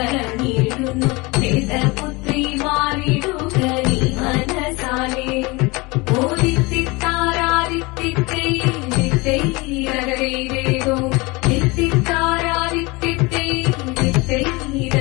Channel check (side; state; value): right; quieter; 24.8 dB